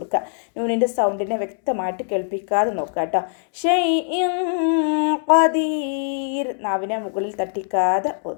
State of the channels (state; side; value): silent; right; 64 dB below the other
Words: നൂനിൻ്റെ സൗണ്ടിനെ വ്യക്തമായിട്ട് കേൾപ്പിക്കാതെ നോക്കുക കേട്ടോ. ഷൈഇൻ ഖദീർ നാവിനെ മുകളിൽ തട്ടിക്കാതെ